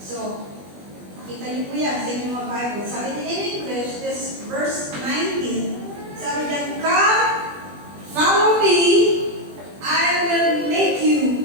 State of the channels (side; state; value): left; late; 20 ms